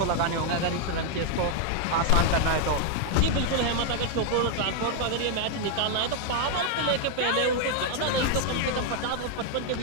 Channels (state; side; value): different; both; correlation 0.00